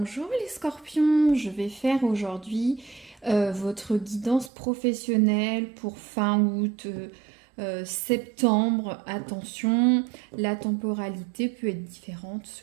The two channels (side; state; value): left; drops out; at 4.5 s